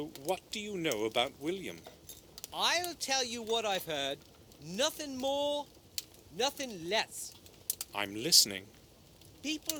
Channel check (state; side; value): identical; both; correlation 1.00